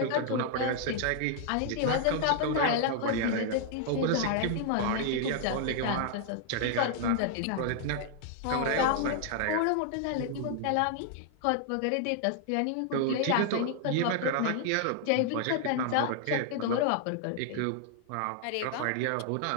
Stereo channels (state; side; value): different; both; correlation 0.00